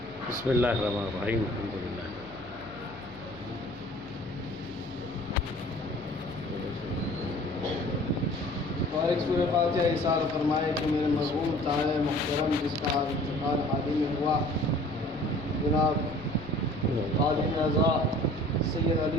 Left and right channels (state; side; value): noise; left; hum, 18 dB below the sound